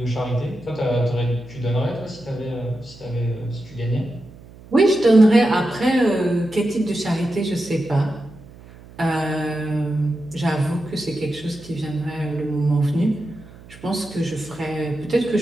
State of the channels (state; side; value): noise; right; hum, 20 dB below the sound